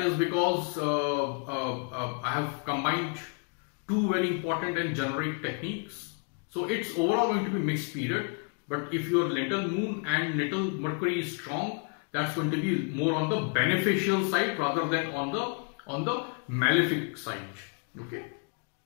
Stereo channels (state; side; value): quieter; right; 38.0 dB